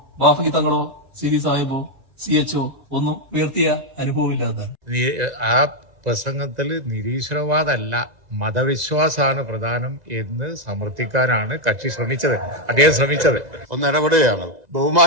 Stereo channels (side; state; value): left; late; 2.0 ms